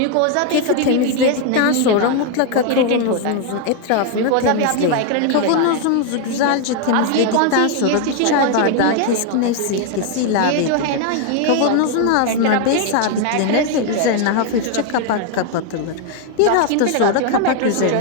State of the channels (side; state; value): both; different; correlation 0.00